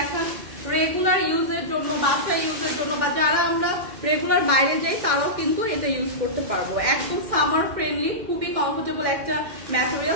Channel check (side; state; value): left; late; 2.1 ms